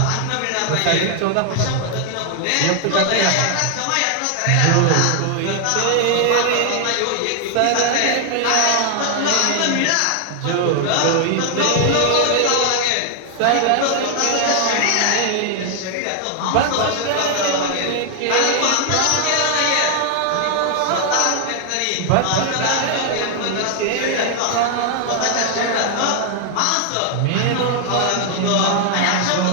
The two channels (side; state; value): both; different; correlation 0.00